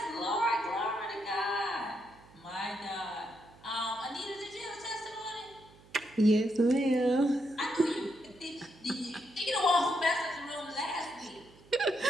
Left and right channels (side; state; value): right; noise; hum, 25 dB below the sound